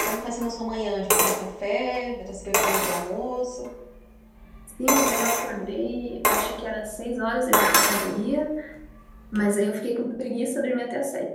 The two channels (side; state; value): both; identical; correlation 1.00